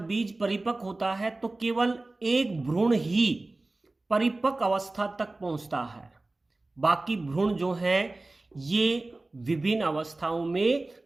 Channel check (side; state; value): left; quieter; 3.0 dB